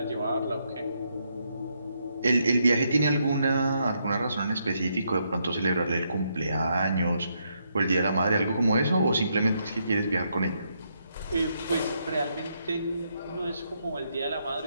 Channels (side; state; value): both; inverted; correlation -0.77